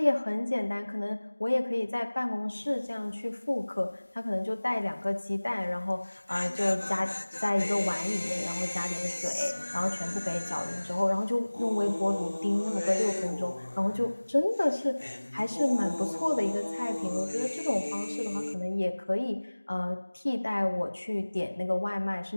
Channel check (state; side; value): inverted; both; correlation -1.00